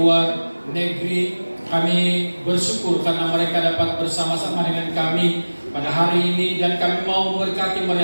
negeri. Kami bersyukur karena mereka dapat bersama-sama dengan kami pada hari ini, dan kami mau memberkati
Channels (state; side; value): inverted; both; correlation -1.00